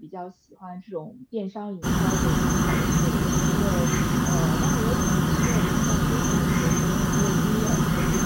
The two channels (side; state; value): both; identical; correlation 1.00